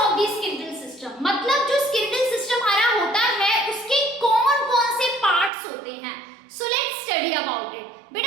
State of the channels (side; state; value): left; drops out; at 5.5 s